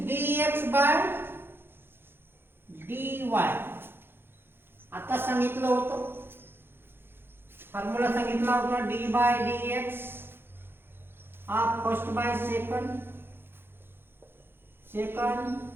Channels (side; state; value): left; late; 0.10 ms